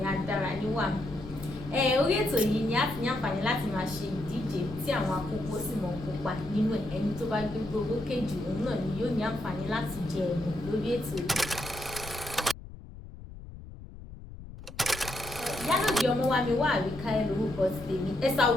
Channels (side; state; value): left; noise; rumble, 14 dB below the sound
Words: Adáraníwà. Orí ètò yìí ni a ti ní àǹfààní láti máa ṣe ìdíje tí àwọn akókó sì mọ̀ kópa nínú ẹ̀. Ẹni tó bá gbégbó owó kejì òun náà ni yóò ní àǹfààní láti jẹ ẹ̀bùn lórí ètò yìí. Ìyálòdè Ọmọwàmíwà Àríkè lórúkọ tèmi. Ẹ̀sà